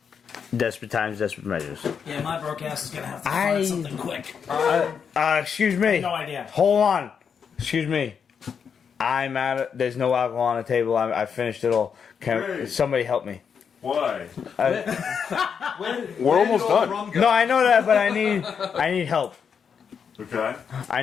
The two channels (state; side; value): quieter; right; 6.8 dB